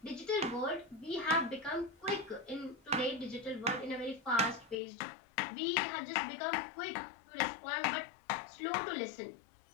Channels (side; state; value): right; drops out; at 4.8 s